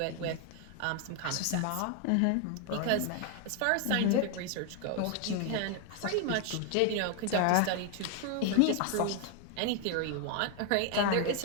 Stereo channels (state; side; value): different; both; correlation 0.01